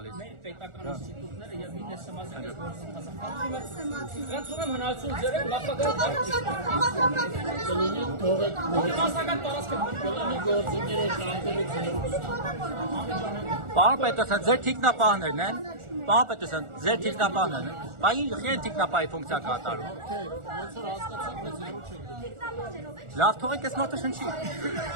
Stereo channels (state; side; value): late; left; 1.4 ms